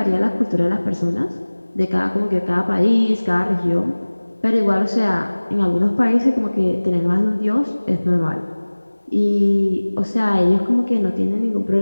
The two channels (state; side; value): inverted; both; correlation -1.00